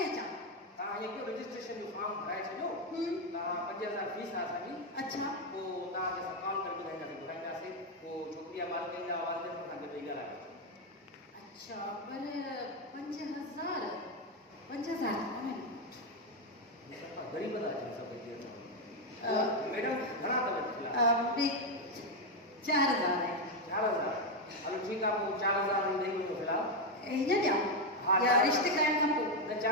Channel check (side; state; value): both; normal; correlation 0.05